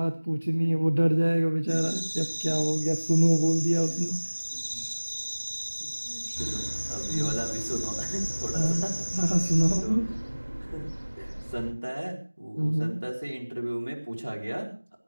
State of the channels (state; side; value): inverted; both; correlation -1.00